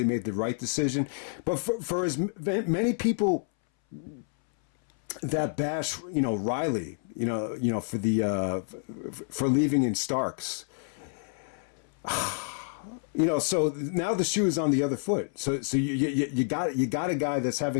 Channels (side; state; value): right; silent; 59 dB below the other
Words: made the right decision. But for as many people that bash, Riley, for for leaving in Starks, so now the shoe is on the other foot. So you got a guy that's